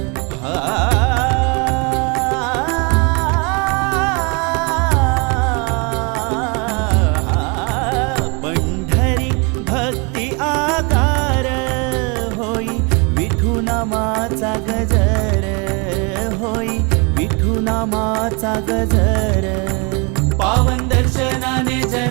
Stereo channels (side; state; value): left; quieter; 31.7 dB